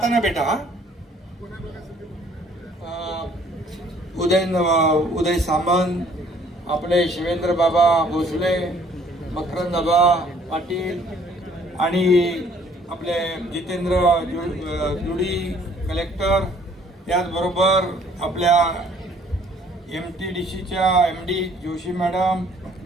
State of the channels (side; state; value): both; normal; correlation 0.59